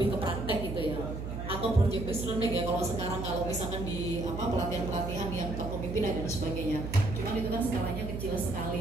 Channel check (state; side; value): noise; right; hum, 6 dB below the sound